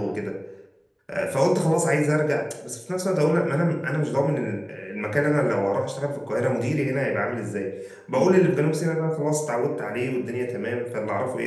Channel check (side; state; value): both; identical; correlation 1.00